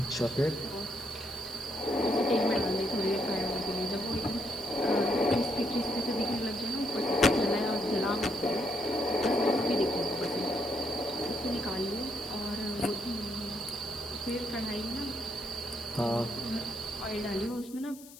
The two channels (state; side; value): noise; left; hiss, 19 dB below the sound